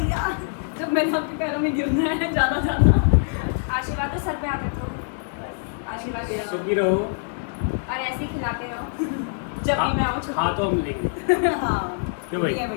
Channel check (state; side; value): silent; right; digital silence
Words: जब मैंने आपके पैरों में गिरना है ज्यादा आशीर्वाद दो, सर पे हाथ रखो। आशीर्वाद दो सुखी रहो, और ऐसे ही खिलाते रहो। जब भी मैं आऊँ हाथों मिलेंगे। हाँ क्यों भाई?